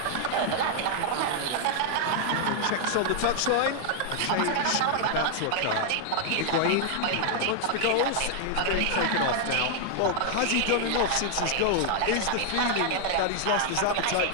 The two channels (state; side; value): different; both; correlation 0.00